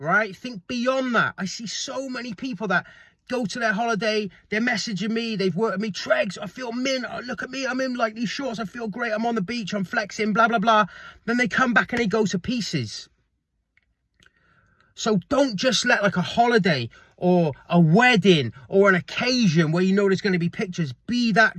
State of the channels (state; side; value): identical; both; correlation 1.00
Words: Think beyond that. I see so many people that go to their holiday, they're messaging me, they've worked with me, Tregs, I feel mint, oh, look at me, I'm in like these shorts, I feel great, I'm on the beach, I'm flexing, blah, blah, blah. Then they come back and they go to pieces. So don't just let like a holiday or a wedding or an occasion where you know there's going to be pictures be that